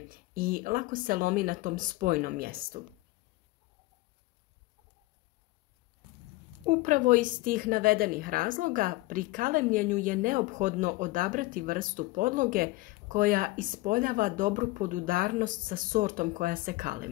i lako se lomi na tom spojnom mjestu. Upravo iz tih navedenih razloga pri kalemljenju je neophodno odabrati vrstu podloge koja ispoljava dobru podudarnost sa sortom koja se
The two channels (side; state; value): right; quieter; 20.3 dB